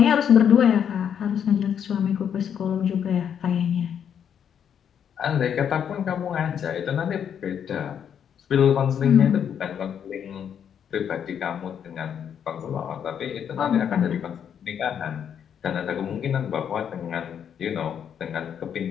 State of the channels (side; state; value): right; quieter; 8.4 dB